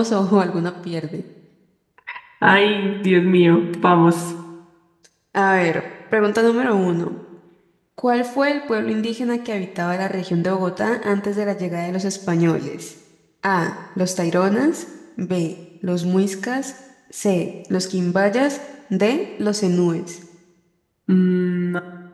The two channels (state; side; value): identical; both; correlation 1.00